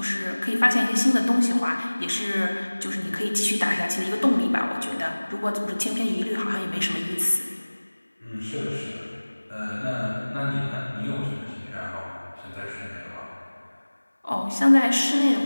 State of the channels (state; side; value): inverted; both; correlation -1.00